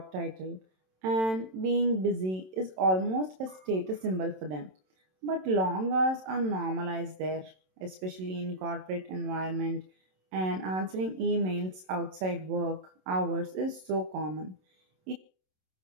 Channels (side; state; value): left; late; 27 ms